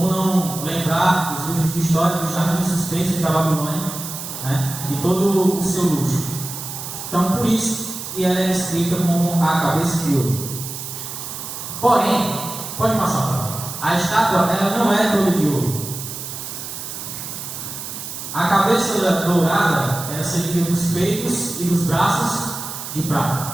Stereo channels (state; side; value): noise; right; hiss, 8 dB below the sound